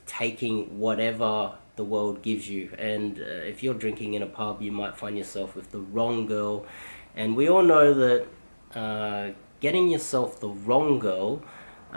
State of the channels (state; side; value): inverted; both; correlation -1.00